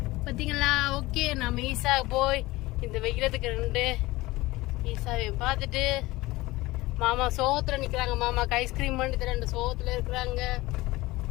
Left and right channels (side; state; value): right; quieter; 19.7 dB